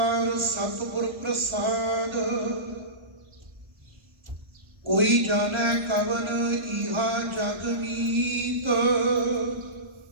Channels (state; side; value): late; left; 1.3 ms